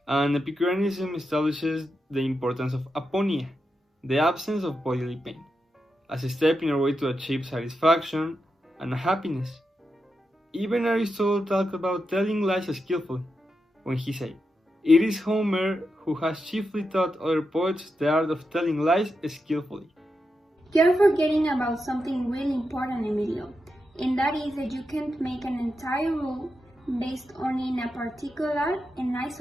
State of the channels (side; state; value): both; normal; correlation 0.87